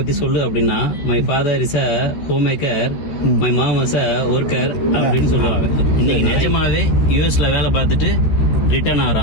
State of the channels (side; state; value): right; late; 14 ms